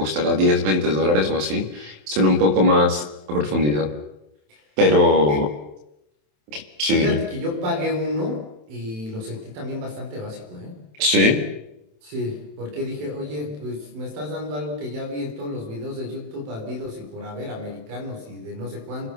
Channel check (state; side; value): late; left; 27 ms